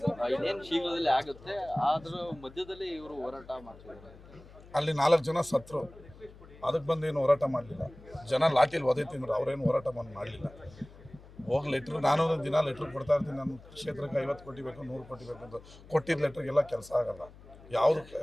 ಇನ್ನೇನು ಶೀಘ್ರದಲ್ಲಿ ಆಗುತ್ತೆ. ಆದ್ರ ಮಧ್ಯದಲ್ಲಿ ಇವರು ಹೋರಾಟ ಮಾಡ್ತಿದ್ದಾರೆ. ಅಲ್ಲಿ 4 ಜನ ಸತ್ರು, ಅದಕ್ಕೆ ಬಂದೇನು ಹೋರಾಟ ಮಾಡಲಿಲ್ಲ. ಜನ ಲಾಠಿಲಿ ಒದೆ ತಿಂದ್ರು, ಅವರೇನು ಹೋರಾಟ ಮಾಡಲಿಲ್ಲ. ಹೋಗಿ ಲೆಟ್ರ್, ನಾನು ದಿನ ಲೆಟ್ರ್ ಕೊಡ್ತಾ ಇರ್ತೀನಿ. ನನ್ನ ಕ್ಷೇತ್ರಕ್ಕೆ 50 ಕೋಟಿ ಬೇಕು, 100 ಕೋಟಿ ಬೇಕು ಅಂತ ಕೊಟ್ಟಿದ್ದ ಲೆಟ್ರಿಗೆಲ್ಲ ಕೆಲಸ ಆಗಲ್ಲ. ಯಾವುದು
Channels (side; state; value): left; noise; hum, 20 dB below the sound